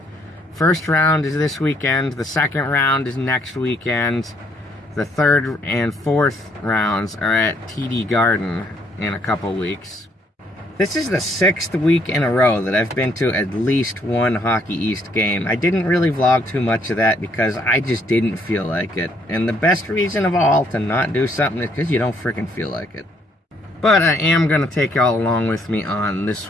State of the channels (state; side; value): normal; both; correlation 0.68